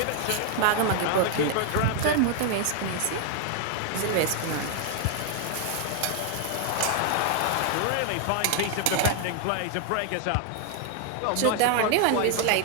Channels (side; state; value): both; different; correlation 0.00